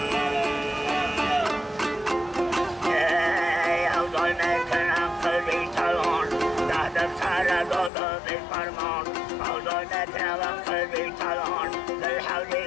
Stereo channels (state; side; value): drops out; right; at 7.9 s